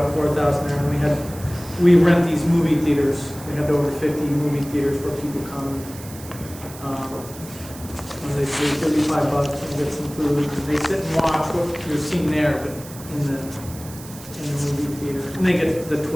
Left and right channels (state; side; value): noise; right; hiss, 16 dB below the sound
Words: 4,000 there, and we rent these movie theaters. We had over 50 movie theaters where people come. When they pay $35 and get some food, they sit and watch what you're seeing there, but in the movie theater. And they get the